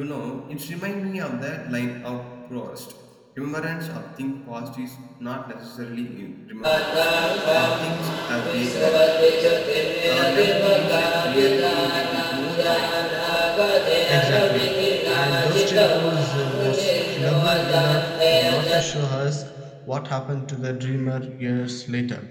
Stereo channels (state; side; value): identical; both; correlation 1.00